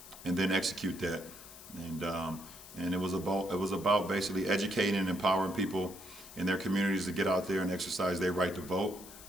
and then execute that, and it was about basically educating and empowering people in their communities to get out there and exercise their right to vote.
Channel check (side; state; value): left; noise; hiss, 16 dB below the sound